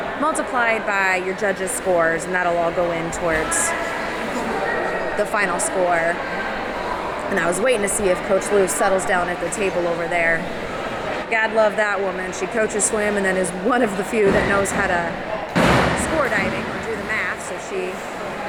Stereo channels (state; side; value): identical; both; correlation 1.00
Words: multiplied by your judges' scores, and that'll all go in towards the final score. And I was waiting to see if Coach Lou settles down at the table over there. God love that woman. She coaches swim and then is one of the few that knows how to score diving or do the math, so she